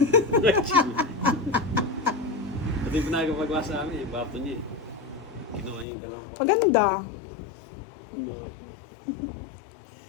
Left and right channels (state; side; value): drops out; right; at 5.9 s